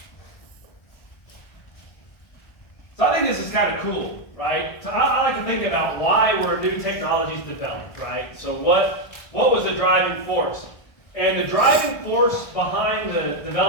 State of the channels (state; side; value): late; right; 1.4 ms